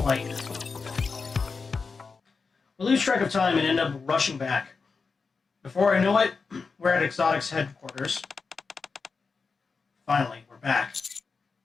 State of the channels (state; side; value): quieter; right; 4.8 dB